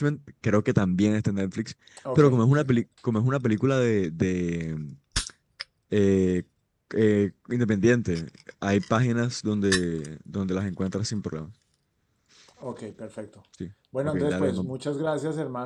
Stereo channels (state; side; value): identical; both; correlation 1.00